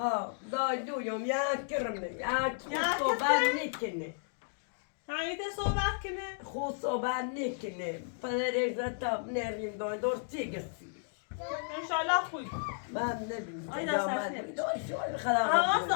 دایلویم یک کرمه یک خود صحبت نکنه همیته صحبت کنه؟ خود صحبت نکنه پدر تا نریم درستی گسی انشالله خوب من نبینم آیدا سرسنه خدا حواست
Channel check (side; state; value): right; silent; digital silence